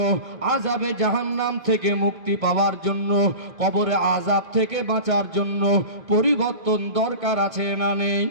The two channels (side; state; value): left; late; 2.0 ms